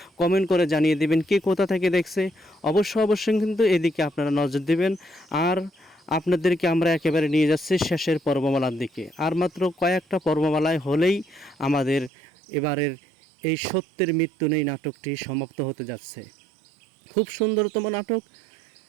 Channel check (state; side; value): drops out; left; at 12.1 s